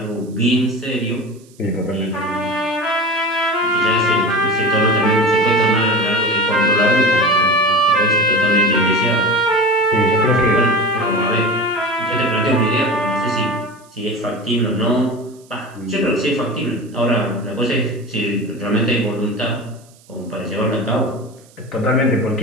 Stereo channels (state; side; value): noise; right; hiss, 28 dB below the sound